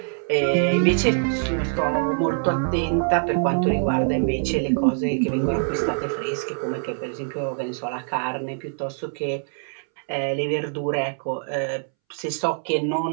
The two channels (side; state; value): left; silent; 63 dB below the other